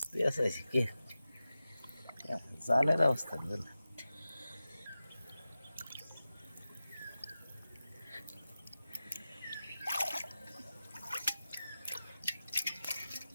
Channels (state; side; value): inverted; both; correlation -0.94